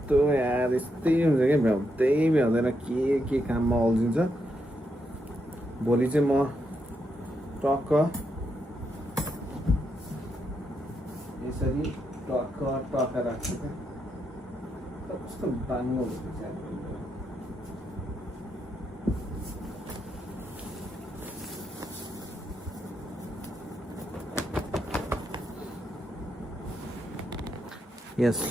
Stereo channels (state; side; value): normal; both; correlation 0.81